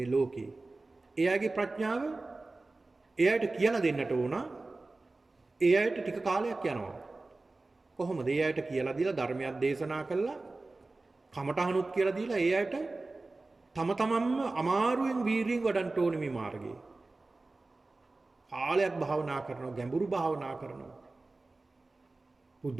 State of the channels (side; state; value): left; quieter; 3.3 dB